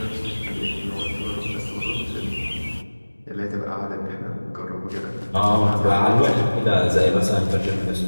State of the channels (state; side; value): inverted; both; correlation -1.00